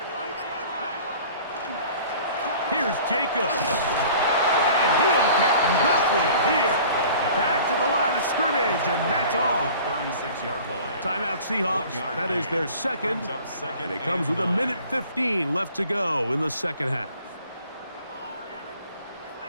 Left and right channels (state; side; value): inverted; both; correlation -0.47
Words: Here's Jacobs. And And he'll get nothing here. Back to the line of scrimmage, and that's all. 36-yard line. Timeout Seahawks. That is their second. And it comes with 1:15 left to go in the second half.